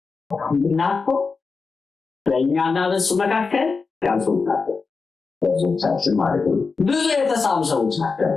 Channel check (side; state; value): right; quieter; 4.7 dB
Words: እና እኮ በእኛና በእሱ መካከል ያልሰዎች ናቸው፣ ብዙዎቻችን ማለት ነው። ብዙ የተሳሉ ሰዎች ናቸው።